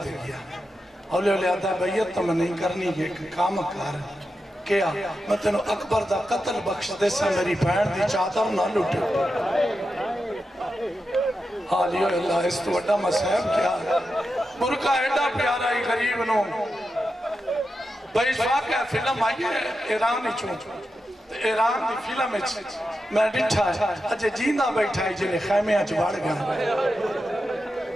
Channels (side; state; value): both; normal; correlation 0.89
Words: دے گیا اولیاء آدھا بیعت تو میں نہیں کرنی ہے کام کار کیا میں تینوں اکبر دا قتل بخش دے سے میری بہن دی چادر نہ لٹے. حالیو اللہ اس تو وڈا مسائب کیا برکہ ایڈا پیارا ہی غریب نو بھائی واقعہ فلم آئی ہے ایرانی چون ایران دی فلم میں ڈٹھا ہے اجھے جیندہ بیٹھا ہے جنہیں خیمے آج بڑھ گیا